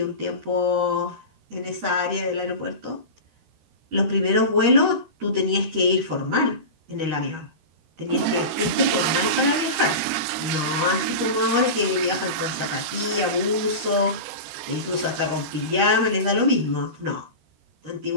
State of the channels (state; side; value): late; left; 13 ms